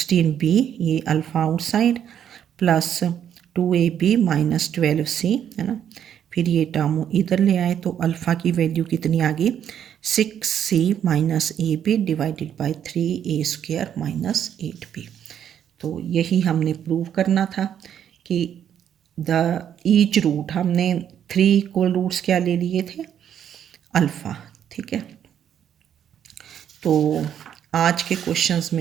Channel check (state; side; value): quieter; left; 9.4 dB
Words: ये alpha outside, plus 2ab minus 12c है ना. फिर ये टर्म इधर ले आए तो अल्फ़ा की वैल्यू कितनी आ गई, 6c minus ab divided by 3a square minus 8b. तो यही हमने प्रूव करना था कि द ईच रूट, हमने 3 इक्वल रूट्स क्या ले लिए थे, अल्फ़ा. ठीक है. तो आज के क्वेश्चंस